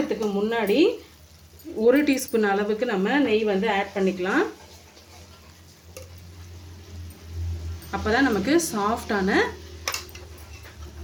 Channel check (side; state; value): both; identical; correlation 1.00